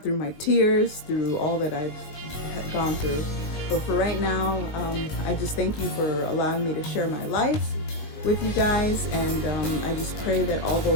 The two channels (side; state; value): right; late; 19 ms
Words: through my tears, through all that I've gone through. But for right now, I just thank you for allowing me to share my life with you guys, and I just pray that all